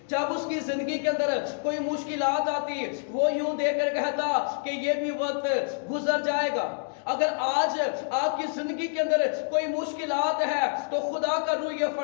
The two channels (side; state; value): right; silent; digital silence